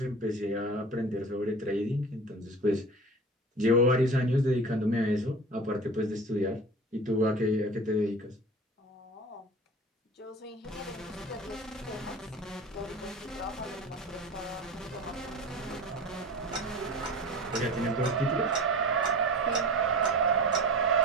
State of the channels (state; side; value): normal; both; correlation 0.35